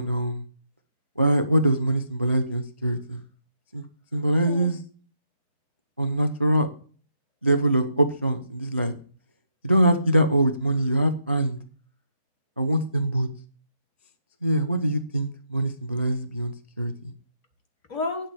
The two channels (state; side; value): inverted; both; correlation -0.78